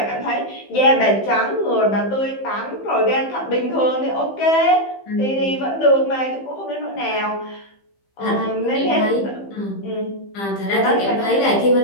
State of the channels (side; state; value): right; late; 15 ms